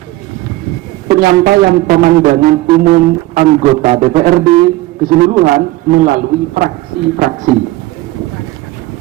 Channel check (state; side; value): quieter; left; 18.2 dB